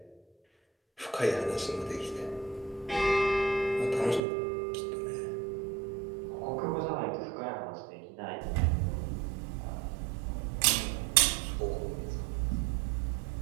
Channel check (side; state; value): left; drops out; at 4.2 s